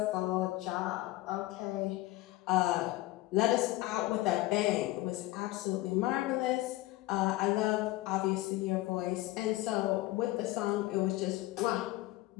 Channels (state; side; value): quieter; right; 18.1 dB